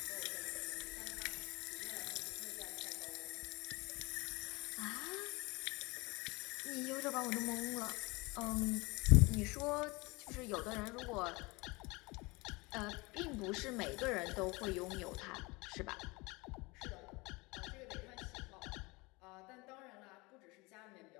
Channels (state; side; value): quieter; right; 25.0 dB